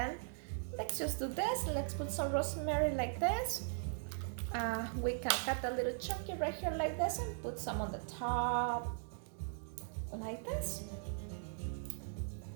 let's just do this. Let's put some rosemary like this. We can cut a little chunky right here like this and put some on the top like this.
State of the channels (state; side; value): silent; left; digital silence